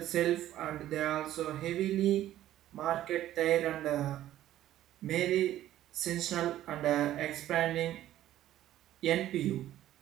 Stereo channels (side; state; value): left; quieter; 13.2 dB